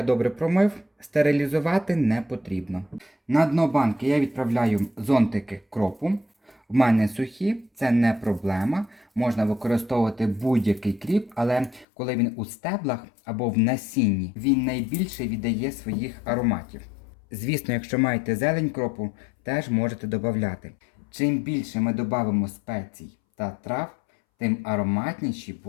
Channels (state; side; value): drops out; right; at 11.9 s